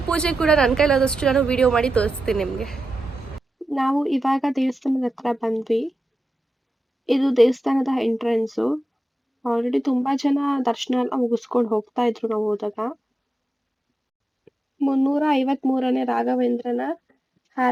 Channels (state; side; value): normal; both; correlation 0.91